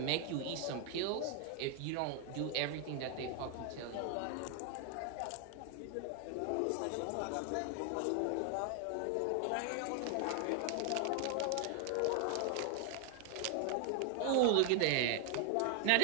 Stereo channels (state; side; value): different; both; correlation 0.00